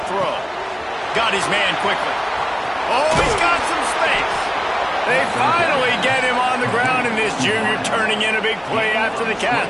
throw. Got his man quickly. Oh, he's got some space. They finally get him on the ground, and this junior turning in a big play after the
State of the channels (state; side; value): identical; both; correlation 1.00